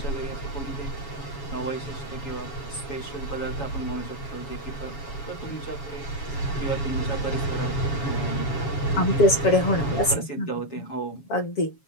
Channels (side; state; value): right; late; 7.2 ms